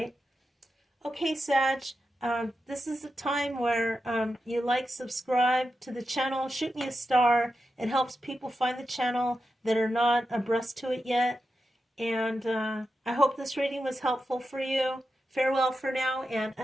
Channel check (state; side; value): normal; both; correlation 0.89